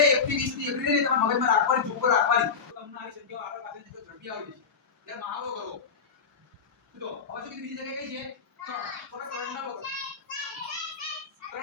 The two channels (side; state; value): right; quieter; 5.8 dB